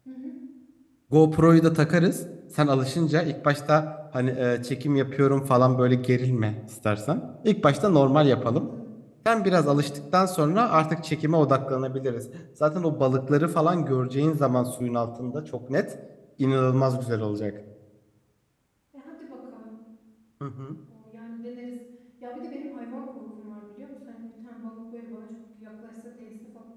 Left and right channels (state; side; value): identical; both; correlation 1.00